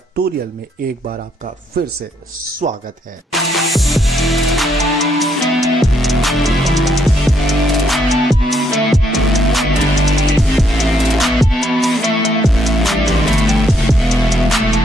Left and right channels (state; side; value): normal; both; correlation 0.74